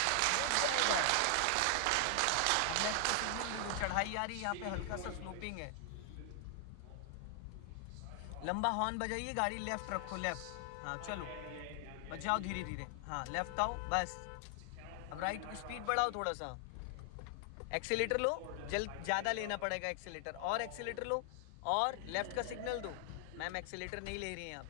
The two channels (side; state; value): both; different; correlation 0.00